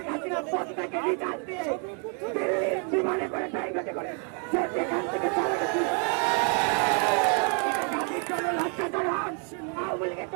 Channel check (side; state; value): left; quieter; 39.6 dB